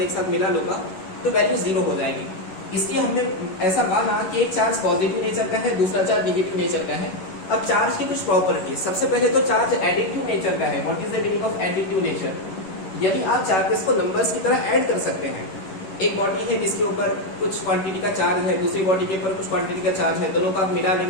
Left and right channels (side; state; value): right; late; 11 ms